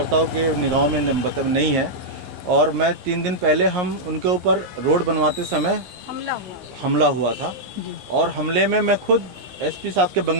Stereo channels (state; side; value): late; left; 15 ms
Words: के निगाहों में मतलब नहीं है, और मैं 3 दिन पहले हम उनके ऊपर रोड बनवाते समय हमला हुआ था, और हमले में मैं खुद SP साहब के